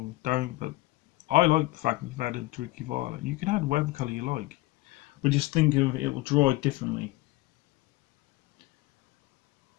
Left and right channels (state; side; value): quieter; right; 19.1 dB